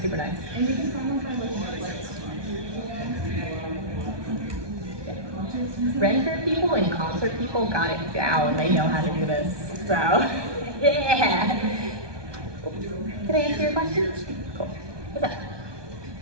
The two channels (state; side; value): late; left; 1.2 ms